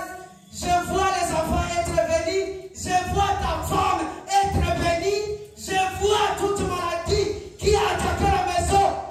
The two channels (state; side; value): identical; both; correlation 1.00